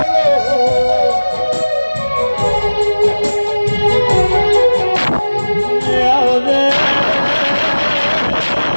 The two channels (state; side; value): inverted; both; correlation -1.00